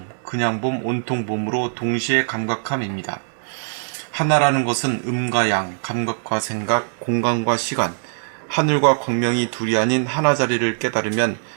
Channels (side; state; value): left; silent; digital silence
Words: 그냥봄, 온통봄으로 동시에 감각함입니다. 하나라는 것은 음과 양, 감각과 생각, 공간과 시간, 하늘과 광명이 둘이 아닌 하나 자리를 깨달으면